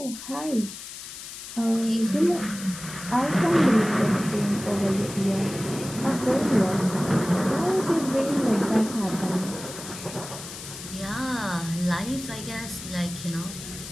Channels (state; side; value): noise; left; hiss, 11 dB below the sound